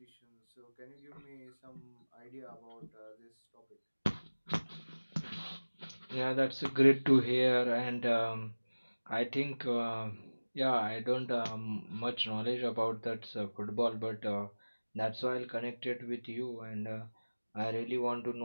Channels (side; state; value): both; inverted; correlation -1.00